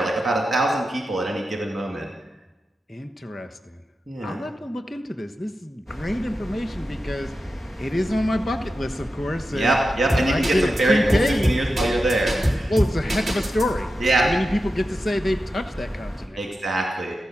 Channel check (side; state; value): both; normal; correlation 0.91